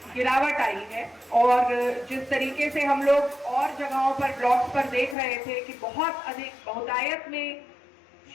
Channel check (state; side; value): drops out; right; at 5.2 s